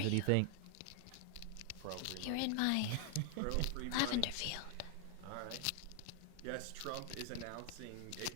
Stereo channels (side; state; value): both; different; correlation 0.00